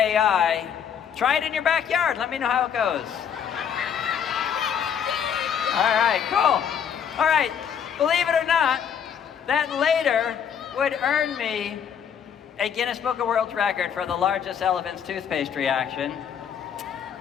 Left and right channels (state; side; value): quieter; right; 8.0 dB